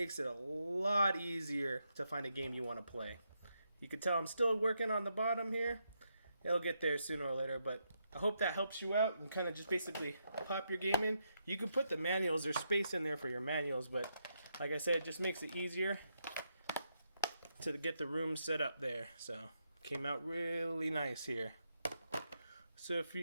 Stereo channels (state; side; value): inverted; both; correlation -0.81